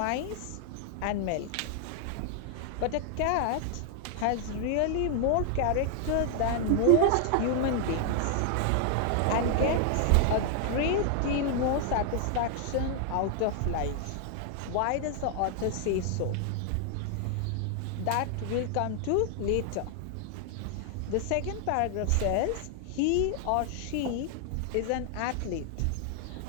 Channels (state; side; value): different; both; correlation 0.00